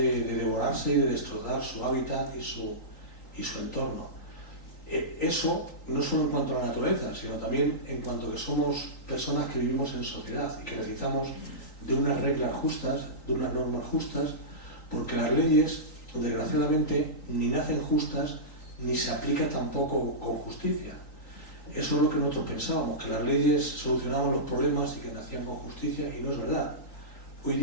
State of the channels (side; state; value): right; late; 3.9 ms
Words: devorarse y de destrozar su hábitat y su entorno. Eso no solo en cuanto a la naturaleza, sino también en cuanto a que somos personas que vivimos en sociedad y que necesitamos de unas reglas justas, de unas normas justas, porque las leyes, desgraciadamente, ni nacen justas ni se aplican tampoco con justicia. Eso es lo que nosotros pensábamos, que las leyes solucionaban los problemas y que nacían con justicia, y no es verdad. Hoy